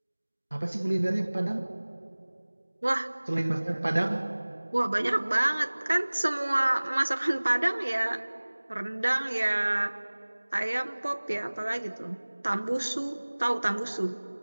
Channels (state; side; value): inverted; both; correlation -1.00